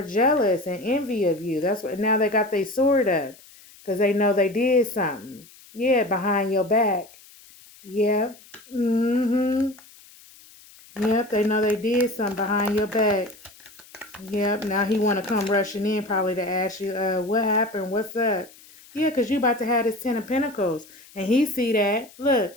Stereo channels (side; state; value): left; noise; hiss, 24 dB below the sound